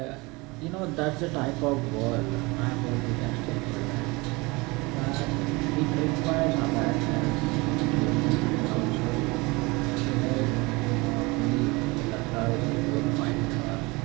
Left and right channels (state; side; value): quieter; left; 24.9 dB